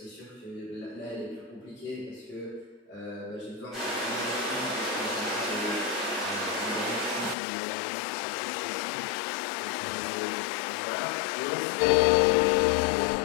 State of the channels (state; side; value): drops out; right; at 7.4 s